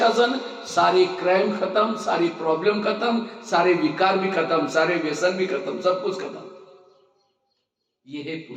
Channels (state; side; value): identical; both; correlation 1.00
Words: सारे क्राइम खत्म, सारी प्रॉब्लम खत्म, सारे विकार भी खत्म, सारे व्यसन भी खत्म, सब कुछ खत्म। ये है